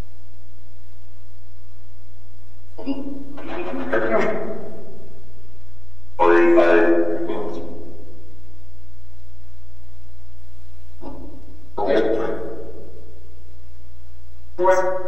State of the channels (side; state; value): right; noise; hum, 18 dB below the sound